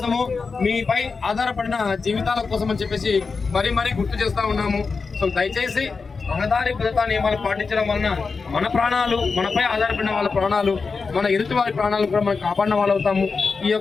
మీపై ఆధారపడిన జీవితాల కోసం అని చెప్పేసి మరీ గుర్తు చేస్తూ ఉన్నాము. సో దయచేసి రహదారి భద్రతా నియమాలు పాటించడం వలన మన ప్రాణాలు, మనపై ఆధారపడిన వాళ్ళ ప్రాణాలు, మన ఎదుటి వారి ప్రాణాలు కూడా మనం కాపాడిన వాళ్ళు అవుతాము. ఈ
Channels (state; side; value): quieter; right; 4.7 dB